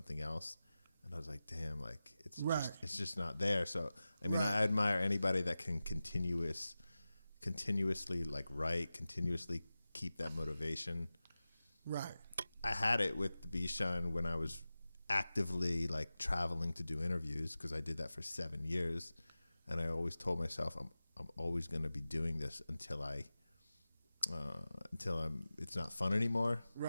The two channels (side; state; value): both; inverted; correlation -0.95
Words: else. And I was like, damn, like it's just not there. So I mean, I admire anybody that can continuously like write, continuously keep that motivation. Right. I had it with TheBeeShine when I was actively like traveling to do interviews, because I did that for 7 years, and I always told myself I'm always going to be doing this until it's not fun anymore.